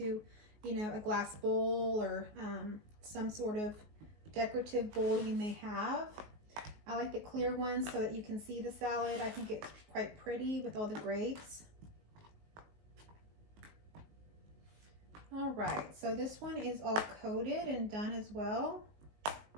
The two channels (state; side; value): late; left; 19 ms